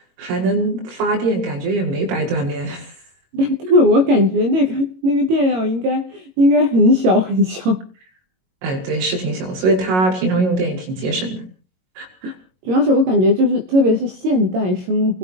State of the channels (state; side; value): late; left; 22 ms